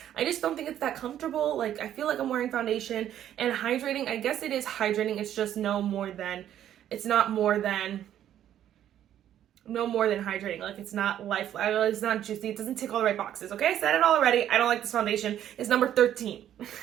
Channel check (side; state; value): left; quieter; 11.0 dB